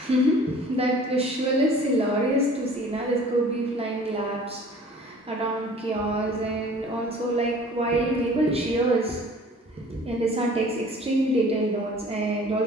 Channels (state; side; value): normal; both; correlation 0.49